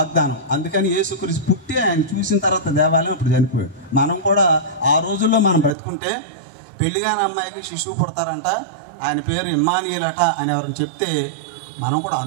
అందుకని యేసుక్రీస్తు పుట్టి ఆయన చూసిన తర్వాత దేవాలయం ఇప్పుడు చనిపోయాడు. మనం కూడా ఆ రోజుల్లో మనం బ్రతుకుంటే పెళ్లిగాని అమ్మాయికి శిశువు పుడతారంట, ఆయన పేరు ఇమ్మానుయేలు అట అని ఎవరైనా చెప్తే మనం కూడా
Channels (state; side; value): drops out; left; at 5.8 s